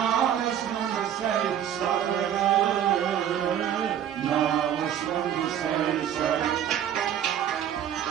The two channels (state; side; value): quieter; left; 9.9 dB